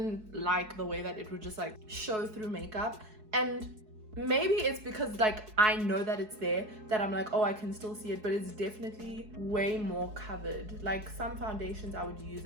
like the way that it would just like show through makeup. And maybe it's because like I know that it's there that I'm like, oh, I can still see it, but it's definitely way more covered. Like some foundations I would use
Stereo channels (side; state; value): left; late; 4.7 ms